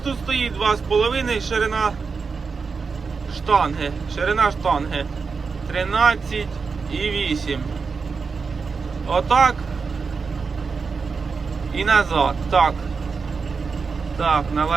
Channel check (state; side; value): quieter; left; 5.0 dB